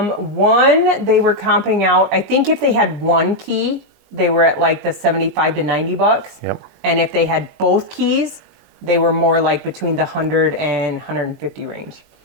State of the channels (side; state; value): left; late; 19 ms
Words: One, they were comping out, I think if they had one key, they were at like the $75 to $90. Yep. And if they had both keys, they were more like between the 100 and 150 range.